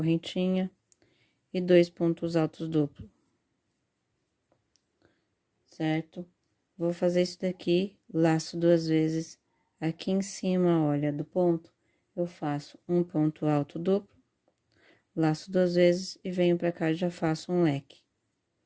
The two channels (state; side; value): identical; both; correlation 1.00